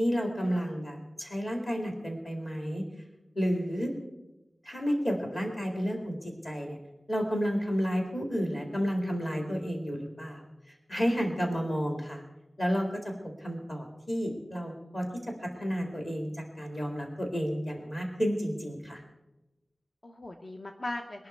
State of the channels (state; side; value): normal; both; correlation 0.97